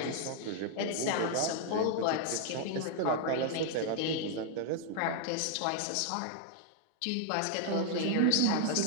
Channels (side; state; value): both; different; correlation 0.00